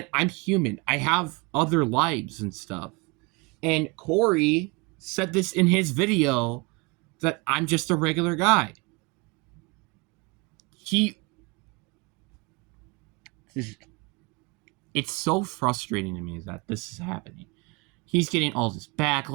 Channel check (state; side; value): quieter; left; 27.6 dB